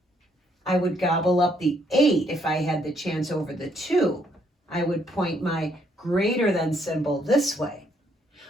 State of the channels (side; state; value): both; normal; correlation 0.71